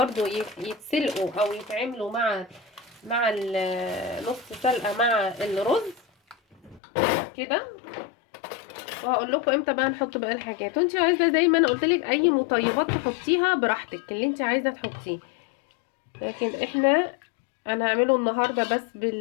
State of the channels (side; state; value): right; drops out; at 6.8 s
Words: يتسلقوا او يتعملوا مع نص سلقه مع الرز كده. وهقول لكم امتى بقى نحط بقى الحاجات. وانت عايزه زي ما انا قلت لك اي مطيبات تحطيها براحتك اللي انت عايزه تحطيه، لكن انا هعمله النهارده بس